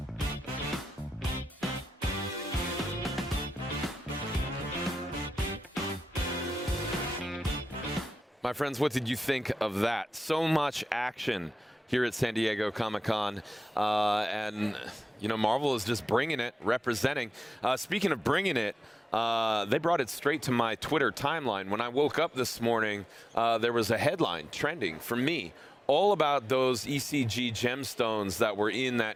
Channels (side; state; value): both; normal; correlation 0.94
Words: My friends, what did you think of that? So much action here at San Diego Comic-Con. And, you know, Marvel is just bringing it, representing. Speaking of bringing it, they brought it straight to my Twitter timeline. When I woke up this morning, there was a headline trending for me all about those ECG gemstones that were in that